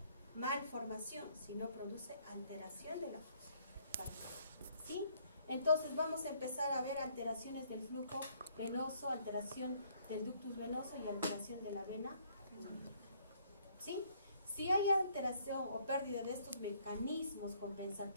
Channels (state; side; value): inverted; both; correlation -0.65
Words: malformación, sino produce alteración de la función. ¿Sí? Entonces vamos a empezar a ver alteraciones del flujo venoso, alteración del ductus venoso y alteración de la vena. ¿Sí? Si hay alteración o pérdida de estos mecanismos